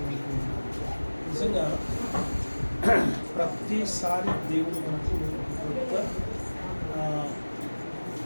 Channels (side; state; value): both; inverted; correlation -1.00